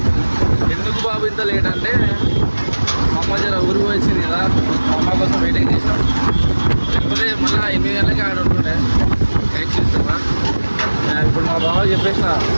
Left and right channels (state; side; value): inverted; both; correlation -1.00